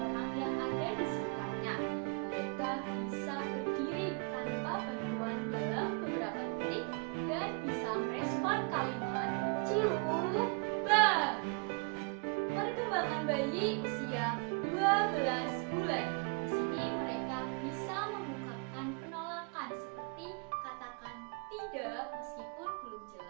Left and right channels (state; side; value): quieter; left; 35.0 dB